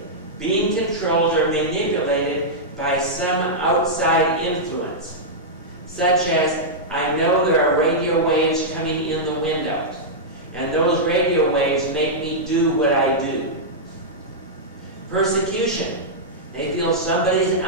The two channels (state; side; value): normal; both; correlation -0.09